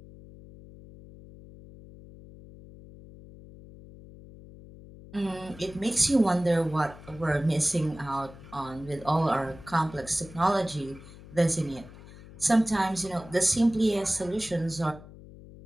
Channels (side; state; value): left; noise; hum, 18 dB below the sound